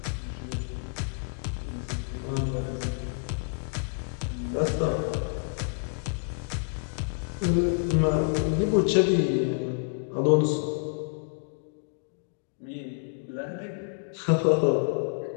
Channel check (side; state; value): right; silent; digital silence